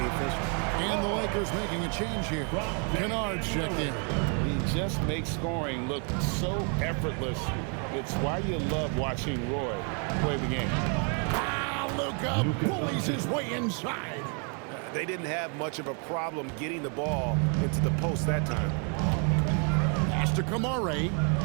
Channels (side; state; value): left; quieter; 39.0 dB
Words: the official. And the Lakers making a change here. Kennard's checked in. He just makes scoring look so effortless. It's why you love watching Roy play the game. Luka bullies his way inside. They didn't have much of a problem getting the ball into the post that time. Pass to Kamara.